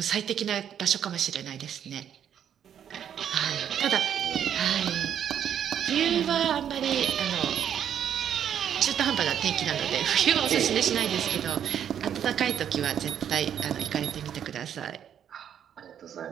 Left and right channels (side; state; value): left; quieter; 9.1 dB